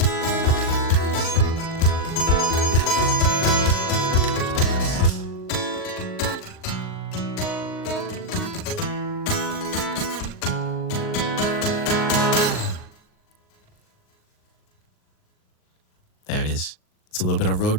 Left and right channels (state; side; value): late; right; 38 ms